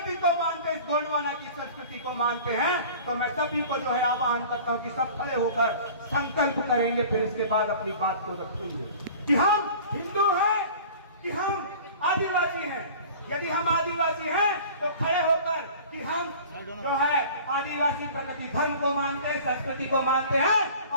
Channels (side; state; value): both; inverted; correlation -0.43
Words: को मानते, इस गोंडवाना की संस्कृति को मानते हैं, तो मैं सभी को जो है आह्वान करता हूं कि सब खड़े होकर संकल्प करेंगे, फिर इसके बाद अपनी बात को रखेंगे कि हम हिंदू हैं कि हम आदिवासी हैं। यदि हम आदिवासी हैं तो खड़े होकर कि हम जो है आदिवासी प्रकृति धर्म को मानते हैं, संस्कृति को मानते हैं,